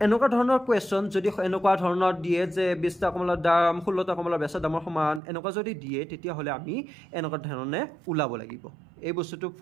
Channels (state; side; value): drops out; left; at 5.2 s